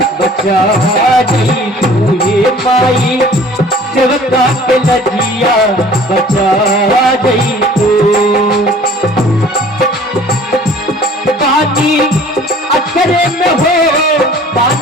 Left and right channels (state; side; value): normal; both; correlation 0.49